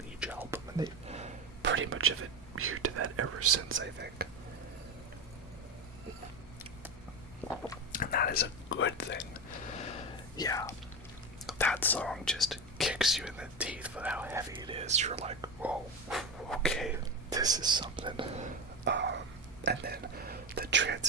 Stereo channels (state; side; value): normal; both; correlation 0.21